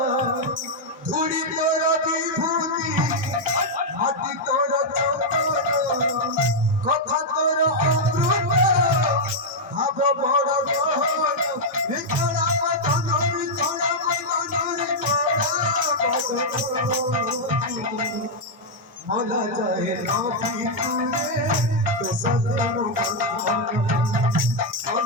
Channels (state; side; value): normal; both; correlation -0.03